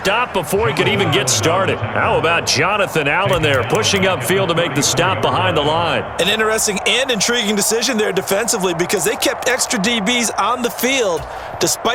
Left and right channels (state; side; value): identical; both; correlation 1.00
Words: before he could even get started. How about Jonathan Allen there pushing upfield to make the stop behind the line? An interesting and intriguing decision there defensively because they kept extra DBs on the field